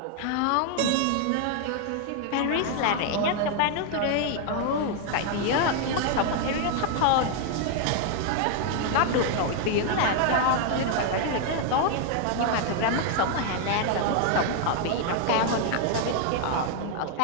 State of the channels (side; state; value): both; different; correlation 0.00